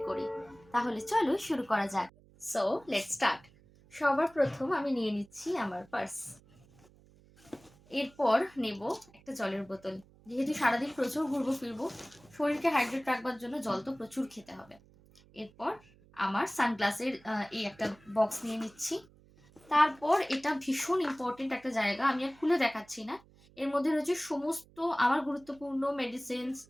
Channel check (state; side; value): noise; right; hum, 27 dB below the sound